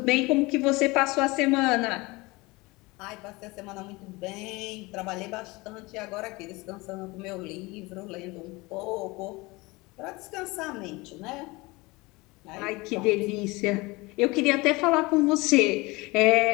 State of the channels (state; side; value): quieter; right; 23.4 dB